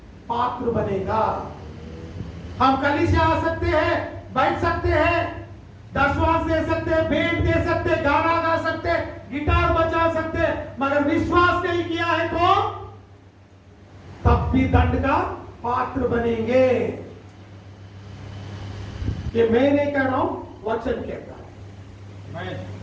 पात्र बनेगा. हम कलीसिया आ सकते हैं, बैठ सकते हैं, दशवांश दे सकते हैं, भेंट दे सकते हैं, गाना गा सकते हैं, गिटार बजा सकते हैं, मगर विश्वास नहीं किया है तो तब भी दंड का पात्र बनेंगे. ये मैं नहीं कह रहा हूं, वचन कहता है.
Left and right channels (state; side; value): identical; both; correlation 1.00